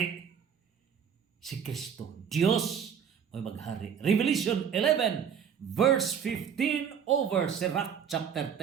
Si Kristo, Diyos, mo'y maghari. Revelation 11, verse 15 over Sirach chapter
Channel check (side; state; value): left; quieter; 7.8 dB